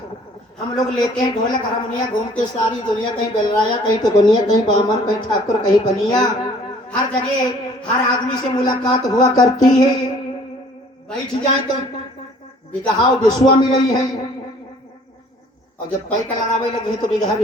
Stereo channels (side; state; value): both; normal; correlation 0.55